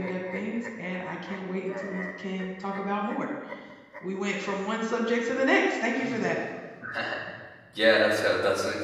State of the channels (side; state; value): both; identical; correlation 1.00